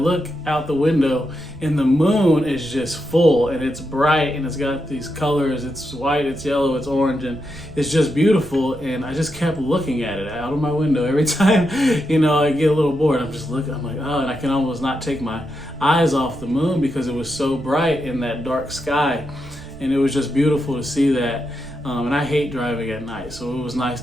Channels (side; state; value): right; noise; rumble, 20 dB below the sound